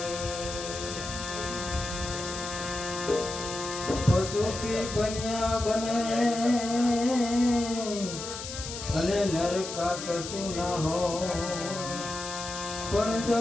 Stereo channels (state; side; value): noise; left; hiss, 8 dB below the sound